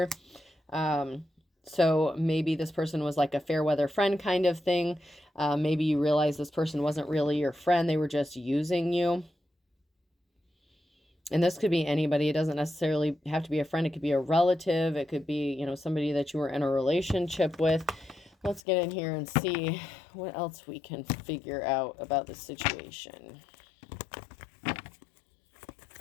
So maybe this person was like a fair weather friend kind of thing. Maybe you realize this person wasn't really your friend. They were just using you. And this could be anybody. It doesn't necessarily have to be a friend. It could be a relative. It could be, somebody that you were in a relationship with. Let's get in here and see what else we can figure out about this situation.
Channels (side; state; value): right; drops out; at 18.6 s